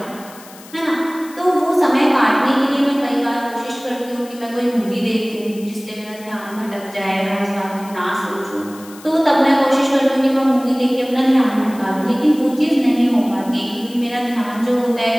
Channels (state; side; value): noise; left; hiss, 20 dB below the sound